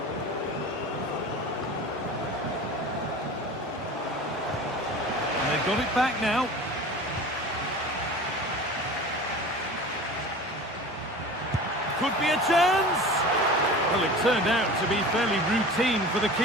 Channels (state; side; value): normal; both; correlation 0.37